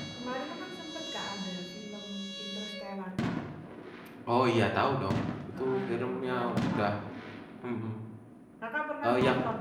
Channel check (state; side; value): identical; both; correlation 1.00